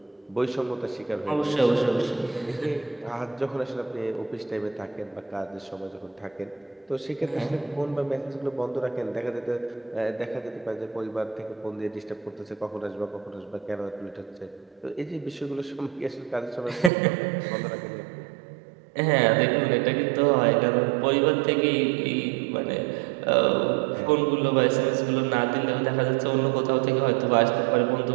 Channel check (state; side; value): drops out; left; at 16.9 s